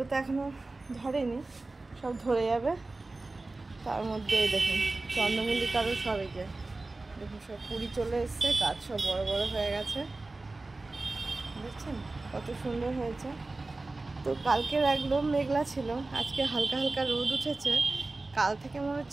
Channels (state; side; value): quieter; left; 3.2 dB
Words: তো এখনও ধরেনি, সব ধরে যাবে। তার মধ্যে দেখুন চন্দ্রমল্লিকারও সব এই যে দেখুন সব কুড়ি চলে এসছে, গাছ সব বড় বড় হয়ে গেছে। বুঝছেন কত সুন্দর হয়েছে। তো কালকের একদম মেঘলা ছিল, আজকে হালকা হালকা রোদ উঠেছে। কাল থেকে মনে